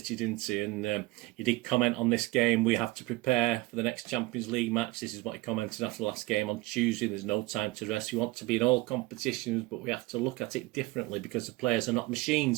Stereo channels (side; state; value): left; quieter; 20.3 dB